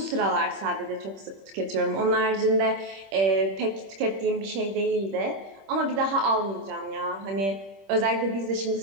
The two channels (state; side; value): late; left; 26 ms